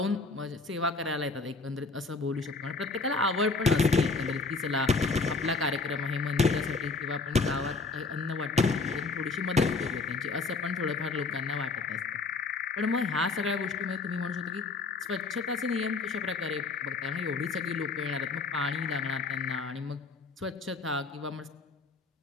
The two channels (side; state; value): right; quieter; 4.1 dB